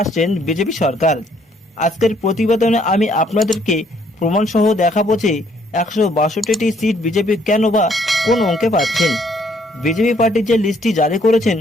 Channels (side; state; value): both; normal; correlation 0.66